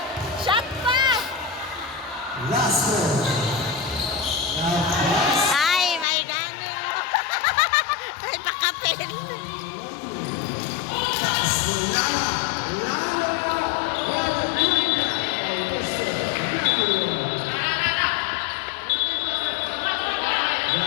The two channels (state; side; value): drops out; right; at 6.1 s